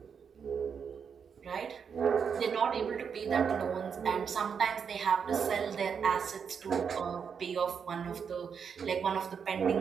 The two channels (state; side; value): quieter; left; 6.7 dB